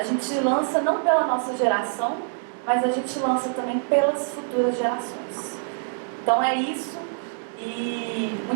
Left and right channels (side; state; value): left; silent; digital silence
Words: gente lança não pela nossa geração, mas a gente lança também pelas futuras gerações. Então é isso, e